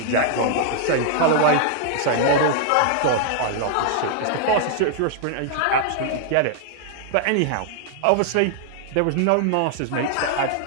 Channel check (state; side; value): different; both; correlation -0.01